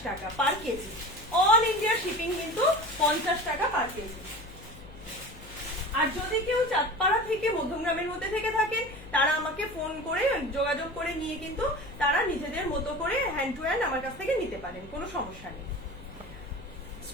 টাকা পার কেজি, অল ইন্ডিয়া শিপিং কিন্তু 50 টাকা পার কেজি। আর যদি কেউ চাঁদপাড়া থেকে মধ্যমগ্রামের মধ্যে থেকে থাকেন, তারা আমাকে ফোন করে যোগাযোগ করে নিয়ে কিন্তু তারা নিজেদের মতো করে হ্যান্ড টু হ্যান্ড আমার কাছ থেকে নিতে পারেন, কোনো সমস্যা নেই।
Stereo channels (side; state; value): left; noise; hum, 18 dB below the sound